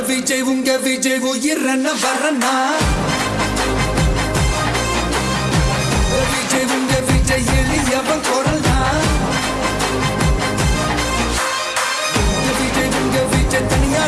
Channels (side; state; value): both; identical; correlation 1.00